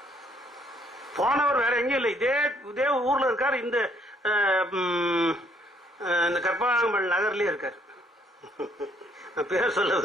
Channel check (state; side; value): normal; both; correlation 0.66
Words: போனவர் வேற எங்கேயும் இல்லை, இதே ஊர்ல இருக்காரு. இந்த கற்பகாம்பல் நகர்லயே இருக்காரு. நான் பேர் சொல்ல